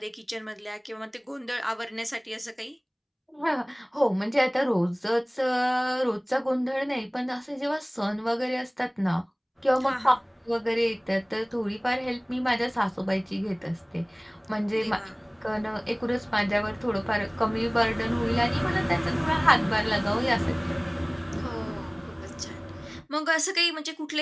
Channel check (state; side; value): identical; both; correlation 1.00